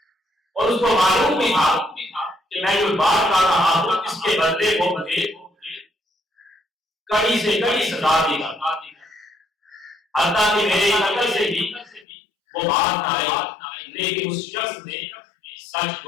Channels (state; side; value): drops out; right; at 12.1 s